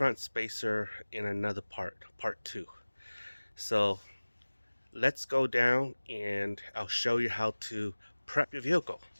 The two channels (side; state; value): both; inverted; correlation -1.00